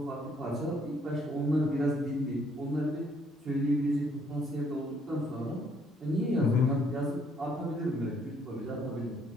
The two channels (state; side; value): normal; both; correlation 0.66